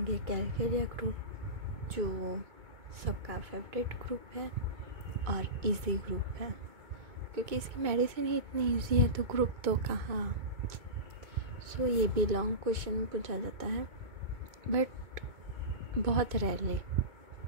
कैलकेरिया ग्रुप, जो सबका फेवरेट ग्रुप है और इजी ग्रुप है, क्योंकि इसकी मेडिसिन ही इतनी इजी है तो ग्रुप तो कहाँ। सो ये भी लॉन्ग क्वेश्चन पूछा जाता है, बट बहुत रेयरली,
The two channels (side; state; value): left; late; 2.2 ms